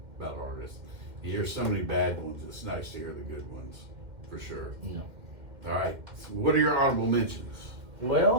about artists. You hear so many bad ones. It's nice to hear the good ones, for sure. Yeah. All right. So what are your honorable mentions?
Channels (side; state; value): left; late; 2.1 ms